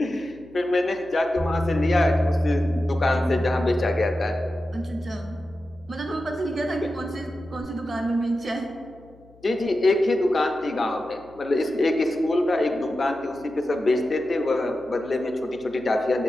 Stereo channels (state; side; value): noise; left; hum, 27 dB below the sound